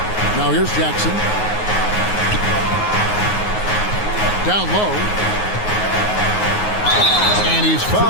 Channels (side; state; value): right; late; 9.5 ms